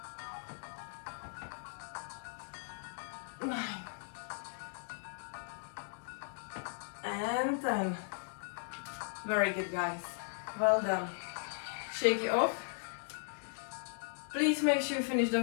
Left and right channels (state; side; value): silent; right; digital silence